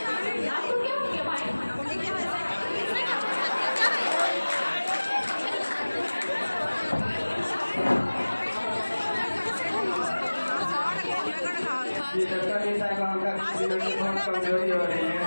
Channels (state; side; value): inverted; both; correlation -1.00